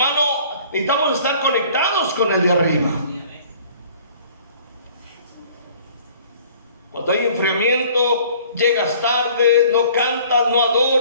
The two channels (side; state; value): both; inverted; correlation -0.53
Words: necesitamos estar conectados con el de arriba. Cuando hay enfriamiento, llegas tarde, no cantas, no